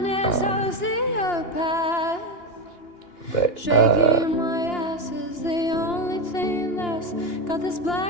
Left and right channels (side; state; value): right; late; 2.9 ms